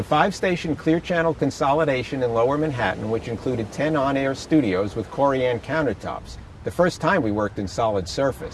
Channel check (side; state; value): both; identical; correlation 1.00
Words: 5-station Clear Channel consolidation in Lower Manhattan, which included 10 on-air studios with Corian countertops, the first time we worked in solid